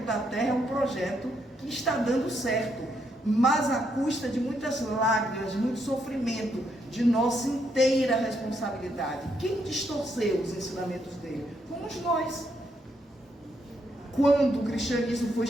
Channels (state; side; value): normal; both; correlation 0.76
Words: da Terra é um projeto que está dando certo, mas à custa de muitas lágrimas, de muito sofrimento, de nossa inteira responsabilidade. Quem distorceu os ensinamentos dele? Fomos nós. Quando o cristianismo foi